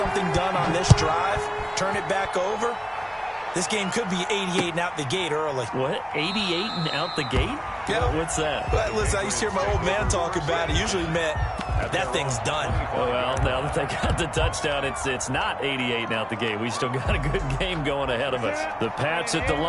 done on this drive, turn it back over, this game could be 88 and out the gate early. What? 88 and out the gate? Yeah. What's that? Well, listen, I used to hear my old man talk about it. Usually meant that thing's done. Well, now that they got the touchdown, it's not 88 and out the gate. We still got a good game going ahead of us. The Pats at the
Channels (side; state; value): both; identical; correlation 1.00